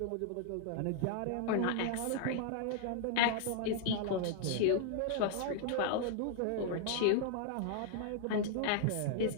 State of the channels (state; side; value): different; both; correlation 0.00